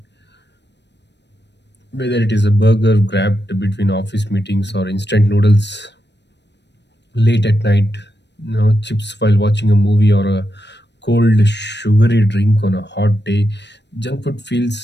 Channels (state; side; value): late; right; 0.50 ms